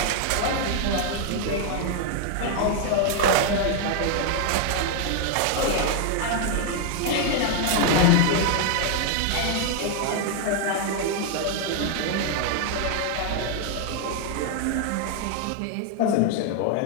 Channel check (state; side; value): different; both; correlation 0.00